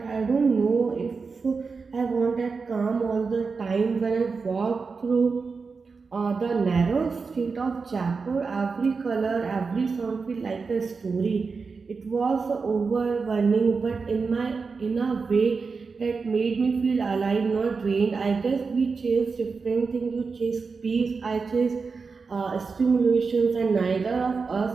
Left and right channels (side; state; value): left; quieter; 4.8 dB